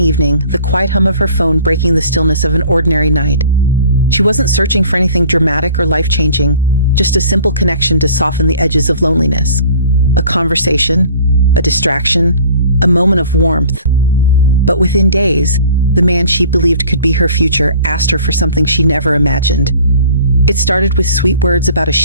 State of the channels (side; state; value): both; inverted; correlation -0.50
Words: evening, the quiet hum of her phone breaking the stillness of an ordinary night. She wasn't searching for anything dramatic or life-changing, just a simple connection to soften the edges of loneliness. A conversation, a distraction, a moment of warmth. But within days, the man she believed could be her future asked her for something she never imagined. It started with sweet words about a